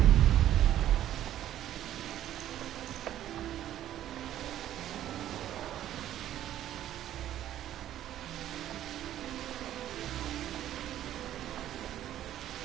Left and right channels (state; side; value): quieter; left; 12.1 dB